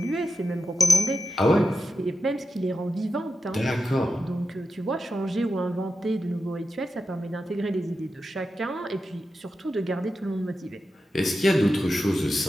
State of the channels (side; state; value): both; normal; correlation 0.90